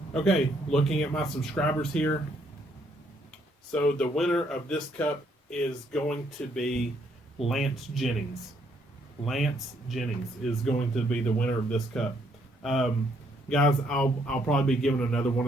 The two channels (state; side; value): normal; both; correlation 0.70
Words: Okay, looking at my subscribers here. So the winner of this cup is going to be Lance Jennings. Lance Jennings is going to be the winner of this cup. Guys, I'll probably be giving another one